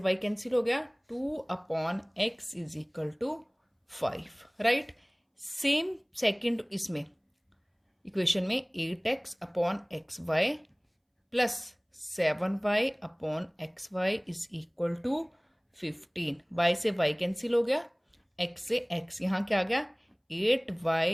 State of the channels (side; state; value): both; identical; correlation 1.00